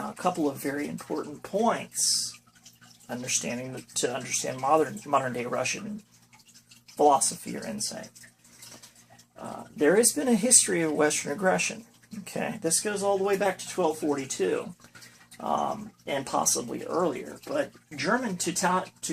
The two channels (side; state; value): both; identical; correlation 1.00